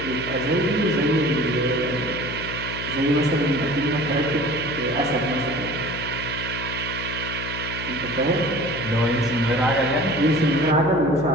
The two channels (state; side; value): noise; left; hum, 8 dB below the sound